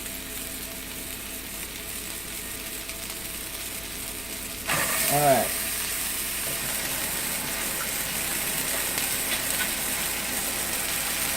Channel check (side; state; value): left; noise; rumble, 17 dB below the sound